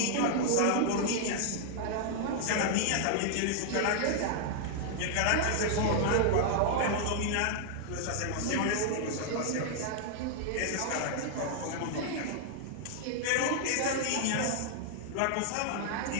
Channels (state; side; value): different; both; correlation 0.00